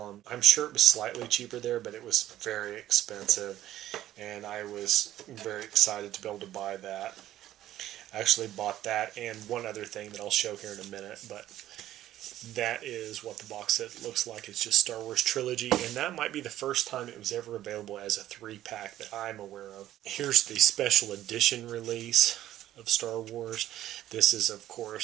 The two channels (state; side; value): quieter; left; 13.2 dB